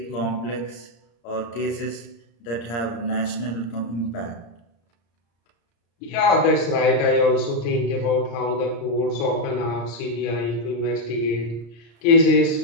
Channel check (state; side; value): late; right; 34 ms